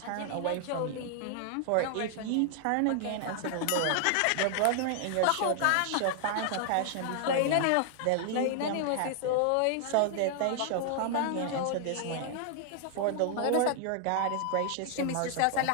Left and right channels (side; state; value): both; different; correlation 0.00